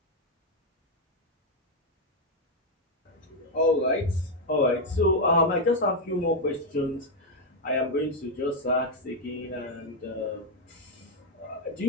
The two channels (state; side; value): normal; both; correlation 0.02